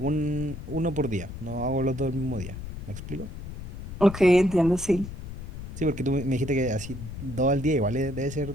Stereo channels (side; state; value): left; noise; rumble, 9 dB below the sound